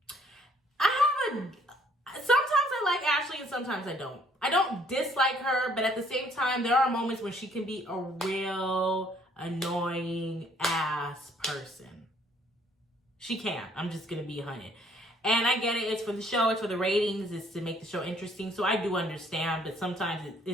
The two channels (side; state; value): both; normal; correlation 0.62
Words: sometimes I like Ashley and sometimes I don't. I don't dislike her, but at the same time, there are moments when she can be a real annoying ass person. She can. I'm just going to be 100. And I get it. It's for the show. It's for the ratings. It's to make the show interesting. So I do understand. But sometimes